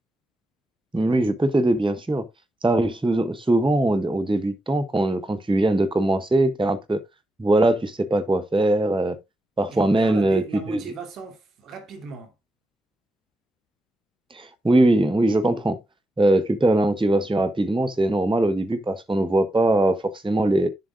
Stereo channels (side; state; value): both; normal; correlation 0.87